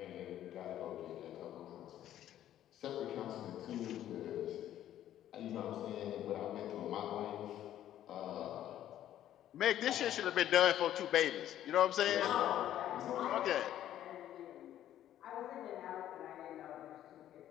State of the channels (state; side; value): quieter; right; 11.9 dB